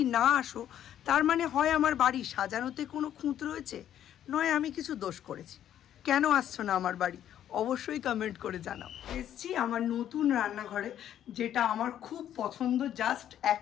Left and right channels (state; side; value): quieter; right; 10.8 dB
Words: না আসো তার মানে হয় আমার বাড়ি সাজানোতে কোনো খুঁত রয়েছে, নয় আমি কিছু দোষ করেছি। কেন আসছো না আমার বাড়ি অবশ্যই কমেন্ট করে জানাও। এসছি আমার নতুন রান্নাঘরে, যেটা আমার খুব পছন্দ জাস্ট